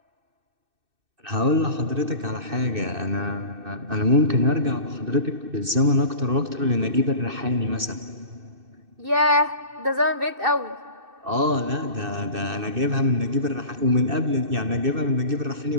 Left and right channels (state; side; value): late; left; 2.6 ms